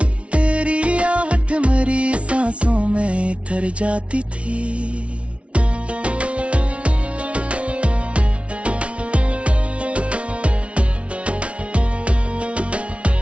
तेरी आहट मेरी सांसों में तर जाती थी।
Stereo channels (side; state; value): left; late; 0.061 ms